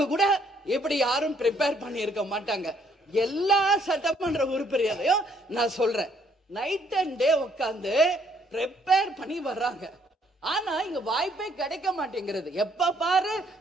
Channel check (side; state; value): both; normal; correlation 0.67